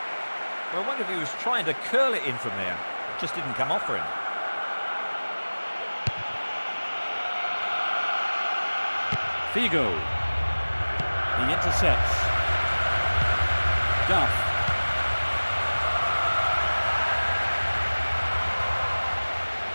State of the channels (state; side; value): inverted; both; correlation -1.00